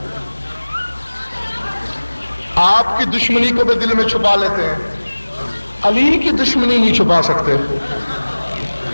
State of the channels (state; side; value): inverted; both; correlation -1.00